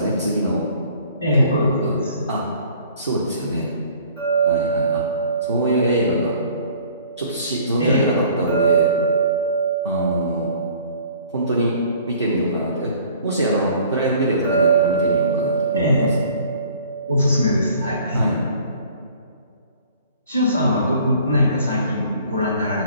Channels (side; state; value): both; inverted; correlation -0.53